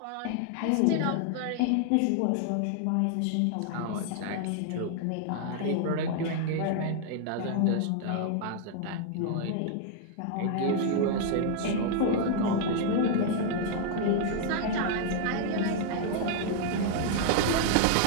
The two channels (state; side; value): different; both; correlation 0.00